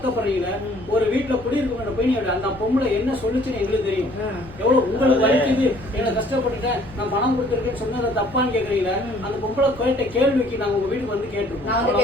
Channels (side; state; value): left; noise; rumble, 20 dB below the sound